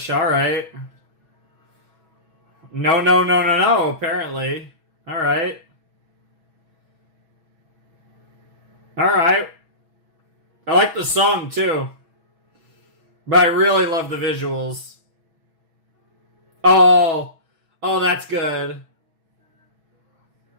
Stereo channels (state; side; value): late; left; 6.1 ms